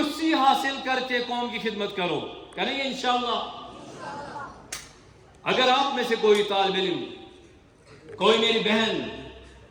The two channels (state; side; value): identical; both; correlation 1.00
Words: حاصل کر کے قوم کی خدمت کرو۔ کریں گے انشاءاللہ؟ اگر آپ میں سے کوئی طالب علم، کوئی میری بہن